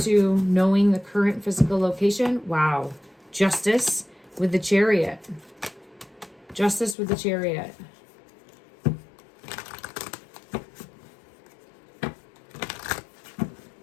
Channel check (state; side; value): drops out; right; at 7.0 s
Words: to knowing the current physical location, wow. Justice with the Chariot. Justice with the Chariot.